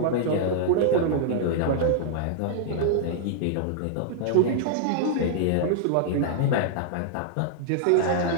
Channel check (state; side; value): different; both; correlation -0.01